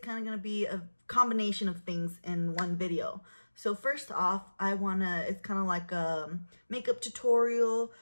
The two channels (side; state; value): both; inverted; correlation -1.00